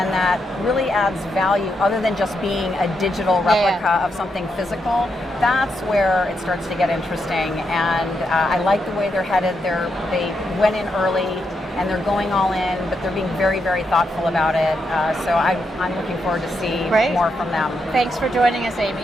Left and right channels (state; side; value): normal; both; correlation 0.82